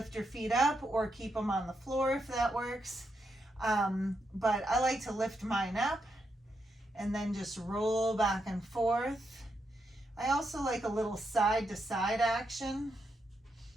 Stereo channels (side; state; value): both; normal; correlation 0.82